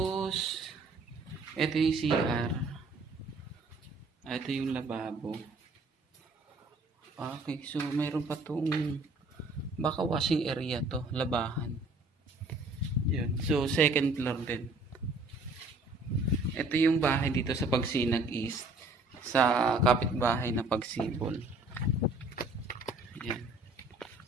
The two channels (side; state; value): left; quieter; 3.1 dB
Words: ito yung CR. Ito yung lababo. Okay, so mayroon pa tong baka washing area to, labahan. Yun. So second floor din. Ito yung bahay dito sa Pagsinag East sa kapitbahay na Pagsibol. Ayan.